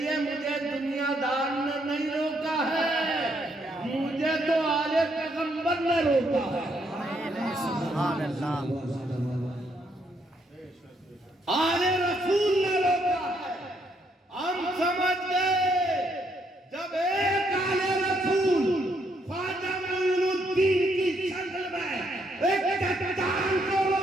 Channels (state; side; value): normal; both; correlation 0.74